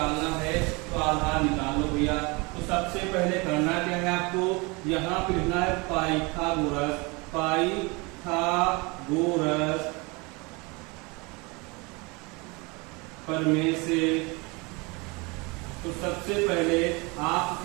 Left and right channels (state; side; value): quieter; left; 27.2 dB